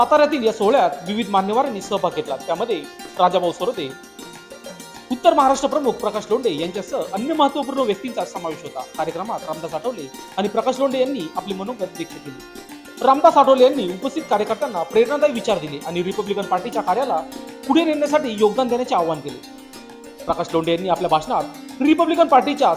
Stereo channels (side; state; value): both; identical; correlation 1.00